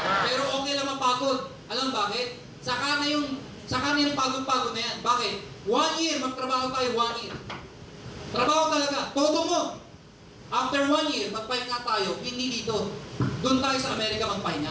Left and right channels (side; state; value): both; identical; correlation 1.00